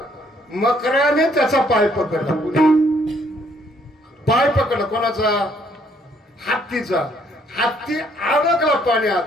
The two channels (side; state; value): both; normal; correlation 0.66